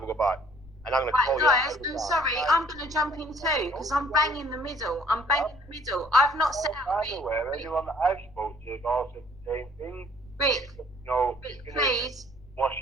a go back. And I'm going to call you. Guys, I'm sorry, I'm going to jump in too, because I'm bang in the middle. I've not set out... Anyone that I've spoken to has all said the same thing. Rick, Rick, please. Wash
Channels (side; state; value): left; noise; rumble, 21 dB below the sound